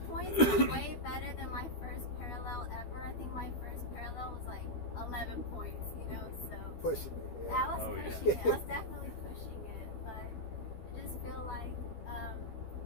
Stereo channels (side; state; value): right; late; 12 ms